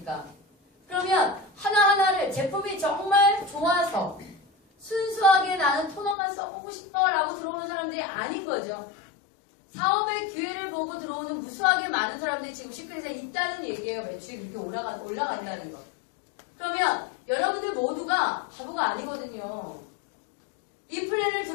그러면 하나하나를 제품이 정말 좋아서 순수하게 나는 토너만 써보고 싶어 라고 들어오는 사람들이 아닌 거죠. 사업의 기회를 보고 들어오는 무수하게 많은 사람들이 지금 시크릿에 있다는 얘기예요. 매출이 그렇게 올라간다는 거. 그러면 여러분들 모두가 바보가 아니거든요. 이 플랜을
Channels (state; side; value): drops out; right; at 6.2 s